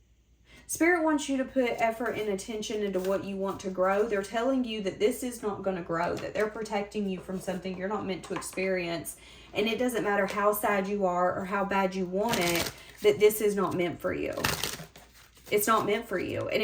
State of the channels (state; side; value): identical; both; correlation 1.00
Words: Spirit wants you to put effort and attention into what you want to grow. They're telling you that this is not going to grow, that they're protecting you from something you're not meant to experience. And it doesn't matter how sad you are or how bad you want it, that this is not meant for you. It's not meant for you. And